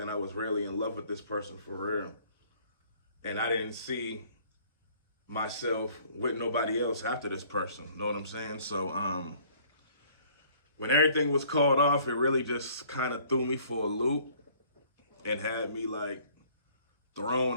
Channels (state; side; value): inverted; both; correlation -0.57